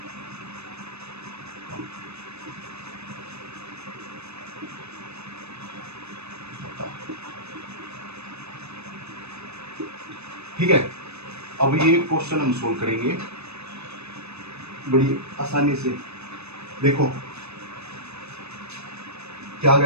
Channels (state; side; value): late; left; 0.80 ms